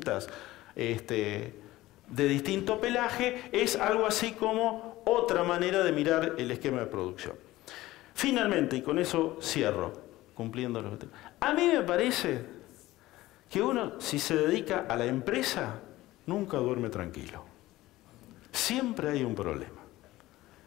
distinto pelaje es algo así como otra manera de mirar el esquema de producción. Finalmente, y con eso cierro, cumpliendo los objetivos. A mí me parece que uno, si se dedica a la empresa, nunca duerme tranquilo. Siempre hay un problema.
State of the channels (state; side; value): quieter; right; 17.1 dB